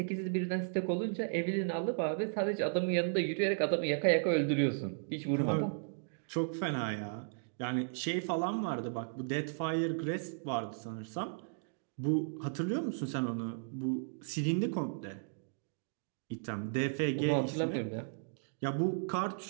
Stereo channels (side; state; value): left; silent; digital silence